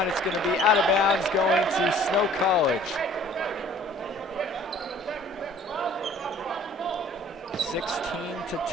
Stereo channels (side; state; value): both; normal; correlation 0.52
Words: it's gonna be out of bounds going to Snow College. 16-10.